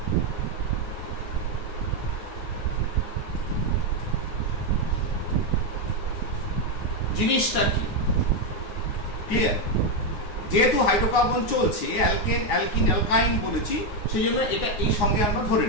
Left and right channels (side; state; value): right; late; 9.6 ms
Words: জিনিসটা কি ক্লিয়ার? যেহেতু হাইড্রোকার্বন চলছে, অ্যালকেন, অ্যালকিন, অ্যালকাইন বলেছি, সেই জন্য এটা এই সঙ্গে আমরা ধরে